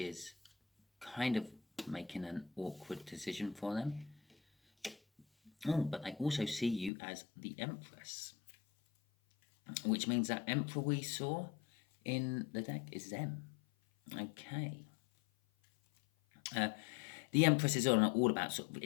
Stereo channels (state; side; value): drops out; right; at 6.9 s